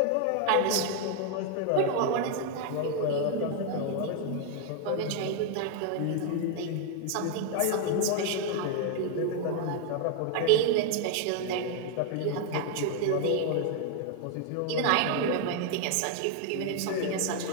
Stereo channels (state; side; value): different; both; correlation 0.00